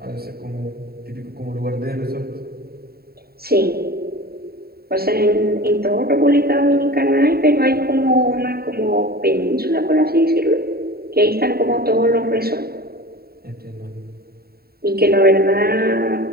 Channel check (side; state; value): left; late; 0.45 ms